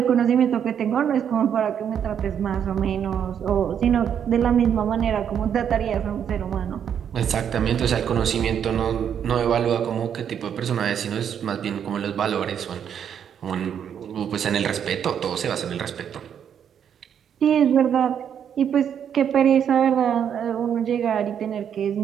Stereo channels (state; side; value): quieter; left; 8.5 dB